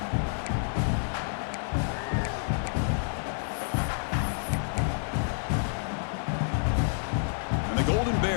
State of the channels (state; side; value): silent; right; digital silence